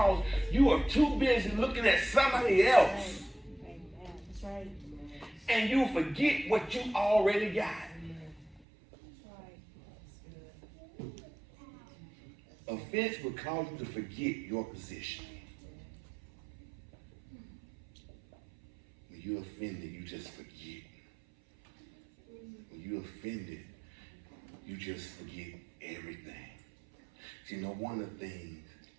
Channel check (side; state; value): left; drops out; at 8.7 s